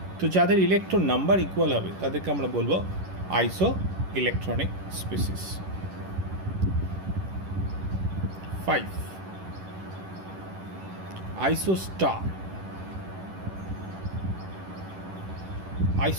তো যাদের electron number equal হবে তাদেরকে আমরা বলবো আইসো electronic species. 5. Isostar.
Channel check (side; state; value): left; late; 11 ms